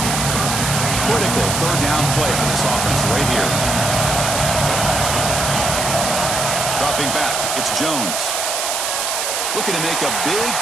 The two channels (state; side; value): noise; right; hiss, 1 dB below the sound